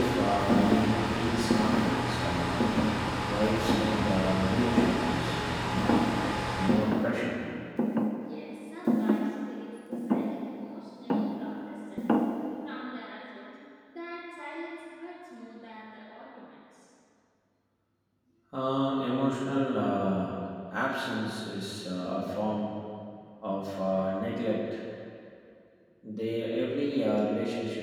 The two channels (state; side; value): identical; both; correlation 1.00